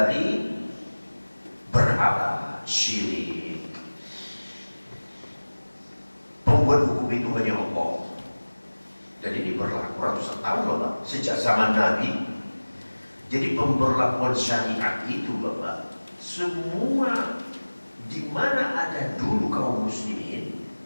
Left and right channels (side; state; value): both; inverted; correlation -1.00